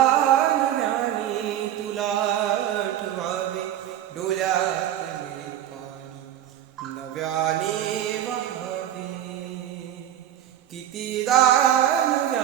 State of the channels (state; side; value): quieter; left; 11.4 dB